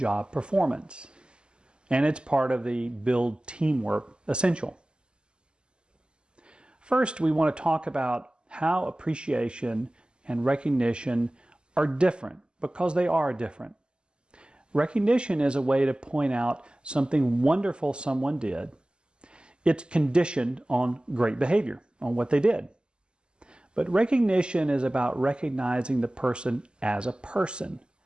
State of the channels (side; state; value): left; late; 0.049 ms